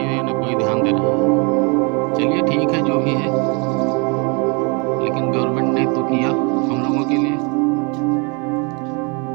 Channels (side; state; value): left; quieter; 32.4 dB